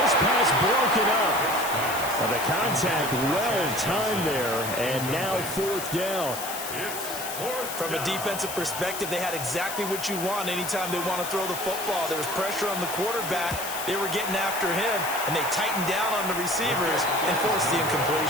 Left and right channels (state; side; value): noise; left; hiss, 7 dB below the sound